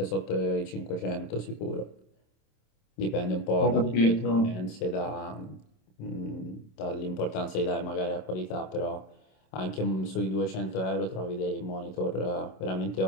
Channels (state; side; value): late; right; 27 ms